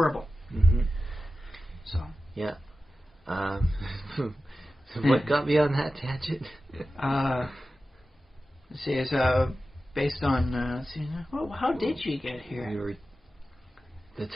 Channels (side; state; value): both; normal; correlation 0.94